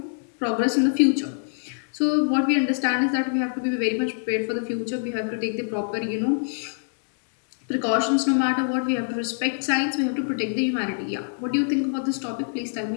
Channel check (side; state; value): right; silent; digital silence